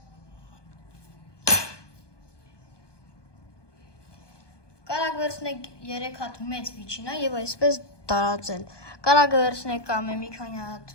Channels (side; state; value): right; late; 1.2 ms